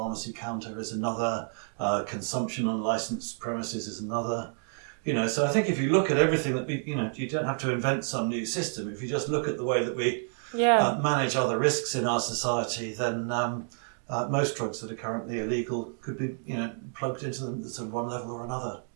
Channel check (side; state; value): left; silent; 56 dB below the other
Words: counter is another, consumption on licensed premises is another. So I think if you look at everything that we, you don't have to invent some new system. If you just look at the way that we manage other risks in our society, then most drugs that are currently illegal could be, plugged into them at sort of one level or another.